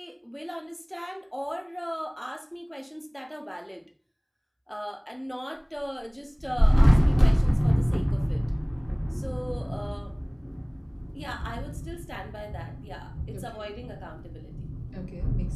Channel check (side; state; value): both; identical; correlation 1.00